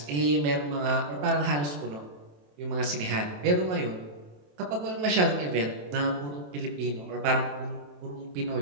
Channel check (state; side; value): late; left; 27 ms